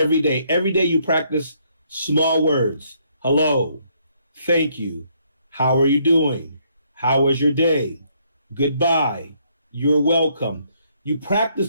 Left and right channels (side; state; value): both; inverted; correlation -0.70